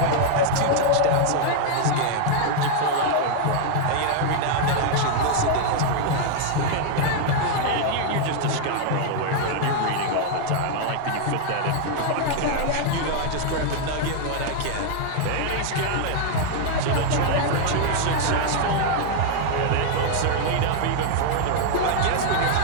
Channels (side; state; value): both; different; correlation 0.00